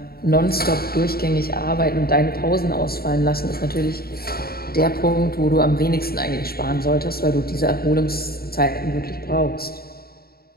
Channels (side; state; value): right; late; 0.44 ms